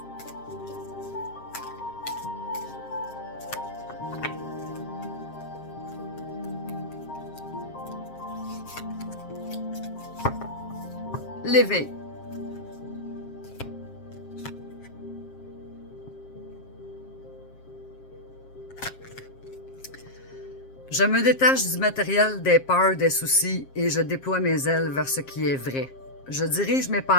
L'éveil. Je me détache du matériel, des peurs, des soucis et je déploie mes ailes vers ce qui est vrai. Je dirige mes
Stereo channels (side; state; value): right; late; 7.5 ms